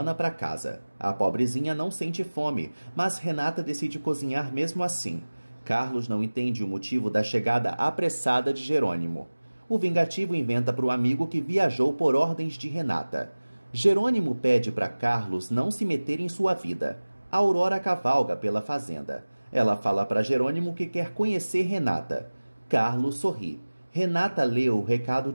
para casa. A pobrezinha não sente fome, mas Renata decide cozinhar mesmo assim. Carlos não entende o motivo da chegada apressada de Jerônimo. O vingativo inventa para o amigo que viajou por ordens de Renata. Jerônimo pede para Carlos não se meter em sua vida. Aurora cavalga pela fazenda. Ela fala para Jerônimo que quer conhecer Renata. Carlos sorri. Renata lê o recado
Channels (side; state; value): both; inverted; correlation -1.00